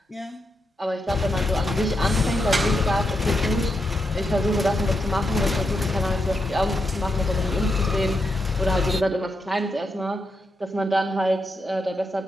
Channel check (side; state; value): both; normal; correlation 0.84